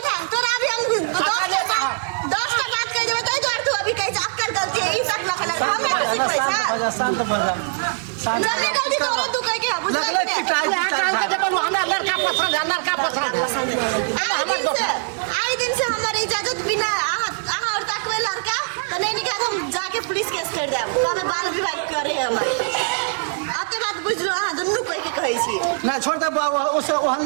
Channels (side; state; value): left; silent; digital silence